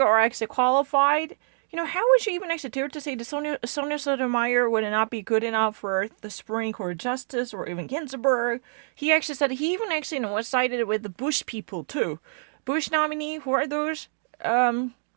actually qualified. You know, how would you even actually dare to say that Sonia Sotomayor would not be good enough for the Supreme Court Justice or even Ginsburg? He actually said he even actually, was sided with the Bush people too. Bush nominee, who are those? What?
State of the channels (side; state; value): left; silent; digital silence